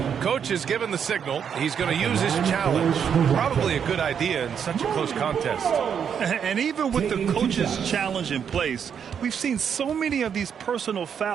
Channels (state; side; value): quieter; left; 7.7 dB